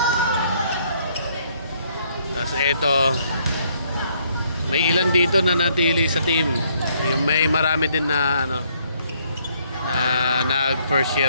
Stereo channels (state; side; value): inverted; both; correlation -0.68